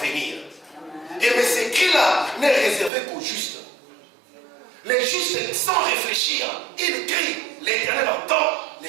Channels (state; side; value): drops out; left; at 2.9 s